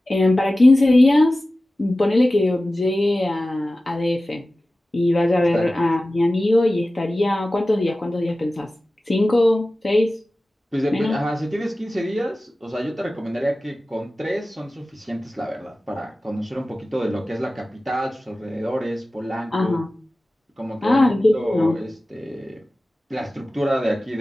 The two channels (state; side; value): normal; both; correlation 0.96